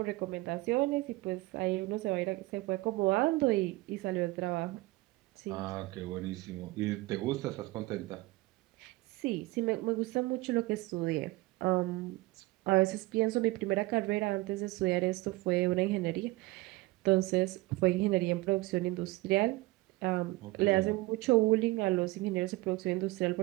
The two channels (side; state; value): left; quieter; 20.5 dB